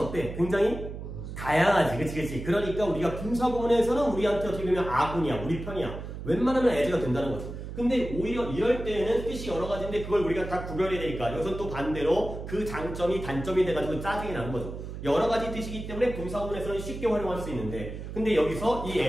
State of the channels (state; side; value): noise; right; hum, 9 dB below the sound